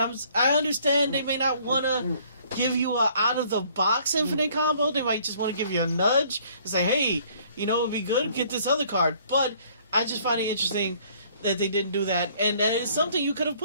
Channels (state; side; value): inverted; both; correlation -0.59